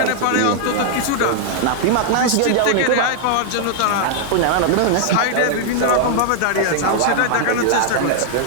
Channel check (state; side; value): different; both; correlation -0.01